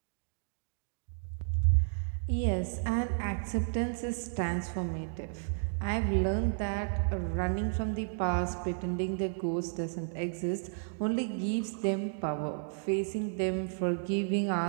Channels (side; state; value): left; silent; digital silence